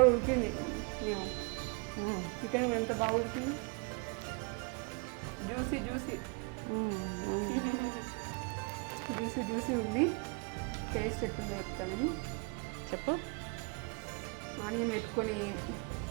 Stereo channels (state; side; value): quieter; left; 33.1 dB